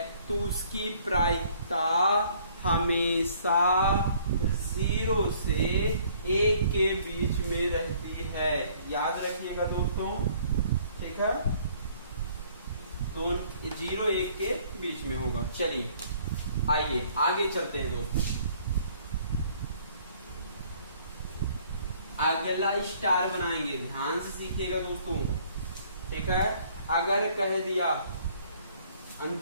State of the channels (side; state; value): both; inverted; correlation -0.59